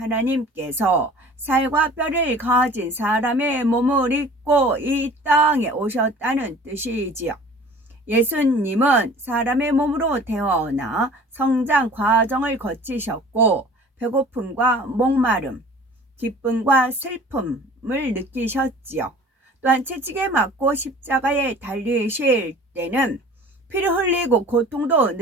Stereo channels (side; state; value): both; normal; correlation 0.46